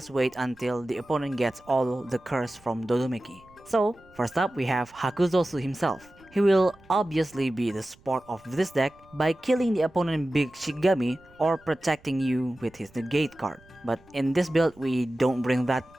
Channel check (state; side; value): noise; right; rumble, 28 dB below the sound